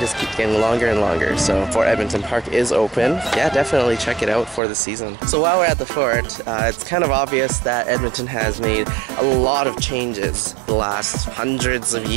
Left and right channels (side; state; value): left; drops out; at 4.6 s